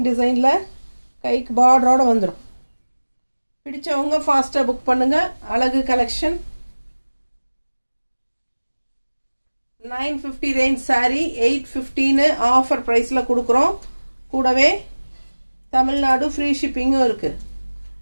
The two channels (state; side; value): inverted; both; correlation -1.00